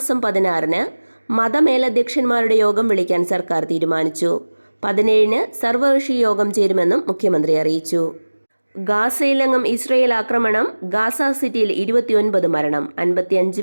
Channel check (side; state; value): both; inverted; correlation -1.00